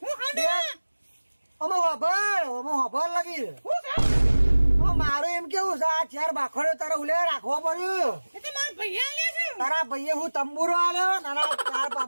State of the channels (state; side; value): inverted; both; correlation -1.00